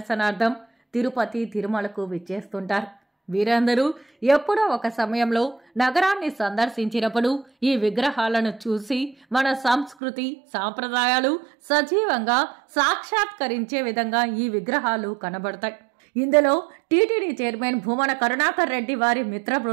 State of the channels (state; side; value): drops out; left; at 10.0 s